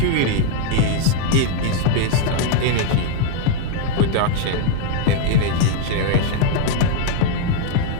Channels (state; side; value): different; both; correlation 0.00